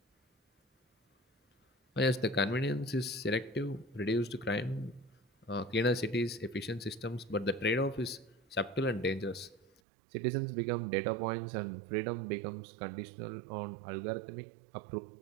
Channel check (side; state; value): left; drops out; at 9.8 s